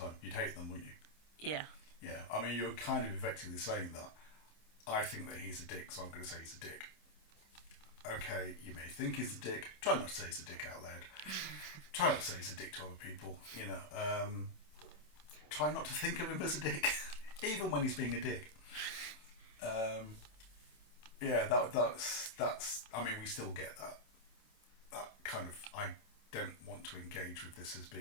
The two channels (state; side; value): late; right; 27 ms